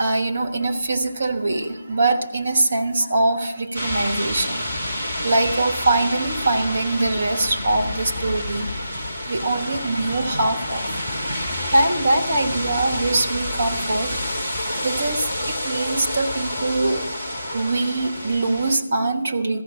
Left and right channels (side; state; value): both; inverted; correlation -0.86